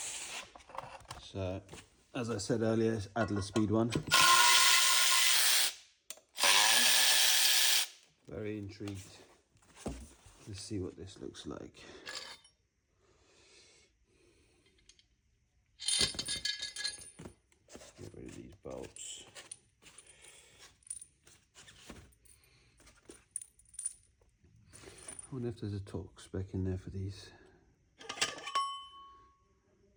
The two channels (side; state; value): both; identical; correlation 1.00